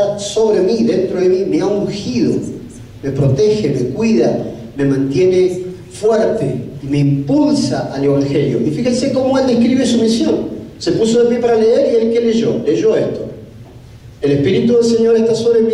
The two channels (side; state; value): both; identical; correlation 1.00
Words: sobre mí, dentro de mí, me ha ungido, me protege, me cuida, me mantiene fuerte y me impulsa al Evangelio. Y fíjense cómo él describe su misión. Se puso de pie para leer y él ¿qué leyó? Leyó esto. El Espíritu del Señor está sobre